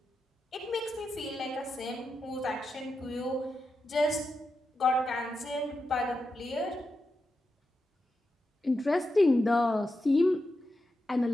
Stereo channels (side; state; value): both; normal; correlation 0.88